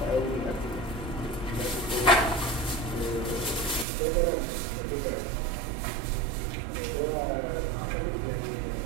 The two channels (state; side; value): drops out; left; at 3.9 s